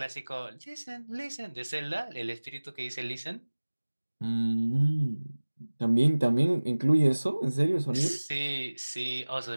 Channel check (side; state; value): both; inverted; correlation -1.00